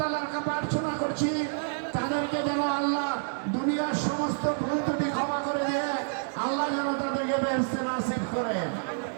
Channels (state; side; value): silent; left; digital silence